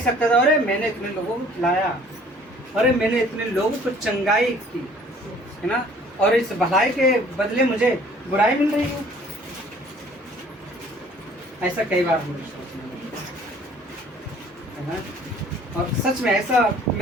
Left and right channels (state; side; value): normal; both; correlation 0.54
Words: सकता था, अरे मैंने इतने लोगों को खिलाया, अरे मैंने इतने लोगों को चंगाई की, है ना, और इस भलाई के बदले मुझे बुराई मिल रही है। ऐसा कई बार मुझे सोचने लगा, है ना, और सच में ऐसा